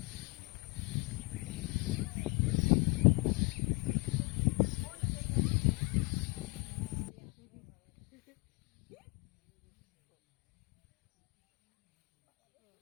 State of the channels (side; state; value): right; quieter; 27.7 dB